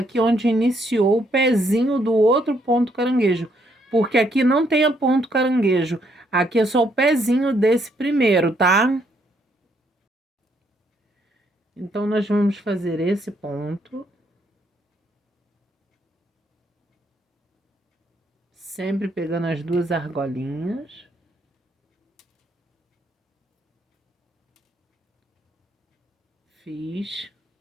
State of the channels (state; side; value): normal; both; correlation 0.72